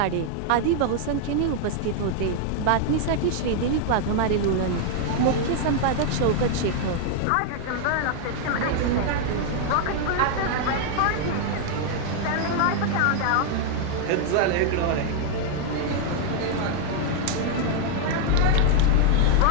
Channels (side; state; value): both; different; correlation 0.00